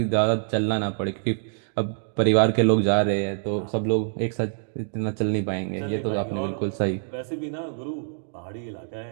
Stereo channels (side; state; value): left; silent; digital silence